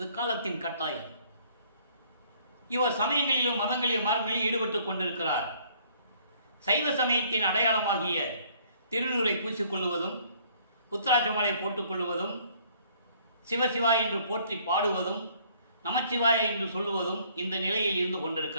காலத்தின் கட்டாயம். இவர் சமயங்களிலும் மதங்களிலும் மார்க்கங்களிலும் ஈடுபட்டுக் கொண்டிருக்கிறார். சைவ சமயத்தின் அடையாளமாகிய திருநூரை பூசிக்கொள்வதும், உத்தராட்சமாலை போட்டுக்கொள்வதும், சிவசிவா என்று போற்றி பாடுவதும், நமச்சிவாய என்று சொல்லுவதும் இந்த நிலையில் இருந்து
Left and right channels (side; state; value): both; inverted; correlation -0.61